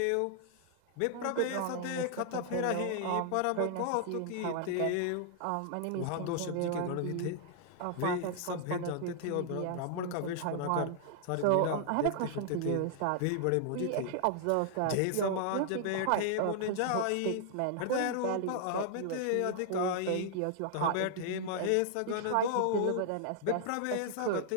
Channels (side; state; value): both; different; correlation -0.01